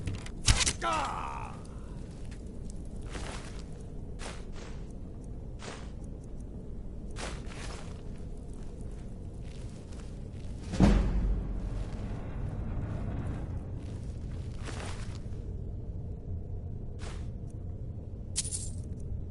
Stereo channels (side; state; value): both; identical; correlation 1.00